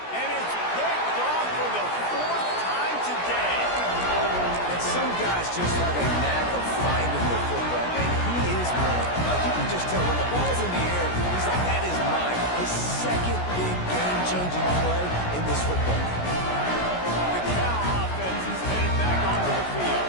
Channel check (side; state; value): right; late; 17 ms